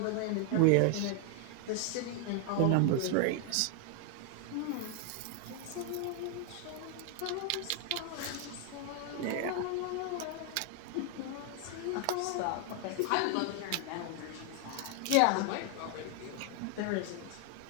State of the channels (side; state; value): both; different; correlation 0.00